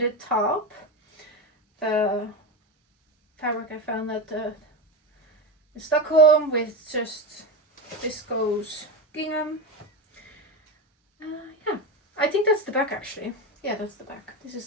top. The fabric I found at in Stockholm with just viscose gingham. Yeah, I think that's the back actually. Yeah, that's the back. This is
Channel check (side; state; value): both; normal; correlation 0.18